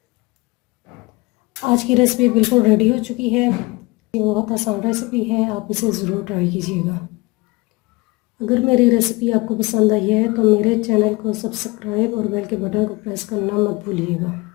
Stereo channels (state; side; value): quieter; right; 23.6 dB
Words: आज की रेसिपी बिल्कुल रेडी हो चुकी है। ये बहुत आसान रेसिपी है, आप इसे ज़रूर ट्राई कीजिएगा। अगर मेरी रेसिपी आपको पसंद आई है तो मेरे चैनल को सब्सक्राइब और बेल के बटन को प्रेस करना मत भूलिएगा।